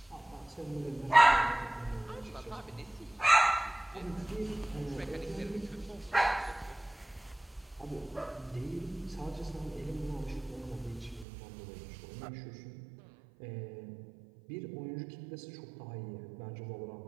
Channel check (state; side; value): drops out; left; at 11.2 s